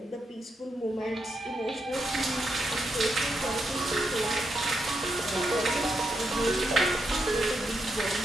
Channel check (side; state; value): both; normal; correlation 0.82